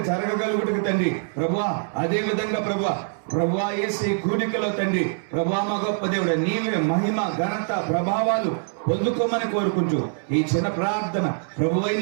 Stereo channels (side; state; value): left; silent; 63 dB below the other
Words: జరగగలుగుటకు తండ్రి ప్రభువా. అదే విధంగా ప్రభువా యేసు ఈ కూడికలో తండ్రి ప్రభువా మా గొప్ప దేవుడు నీవే మహిమ ఘనత ప్రభావాలు పొందుకోమని కోరుకుంటూ ఈ చిన్న ప్రార్థన ప్రభువైన